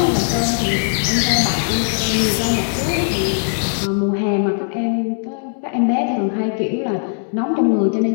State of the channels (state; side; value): silent; right; 64 dB below the other